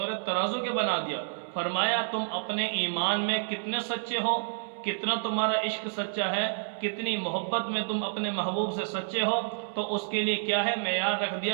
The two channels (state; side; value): silent; left; 58 dB below the other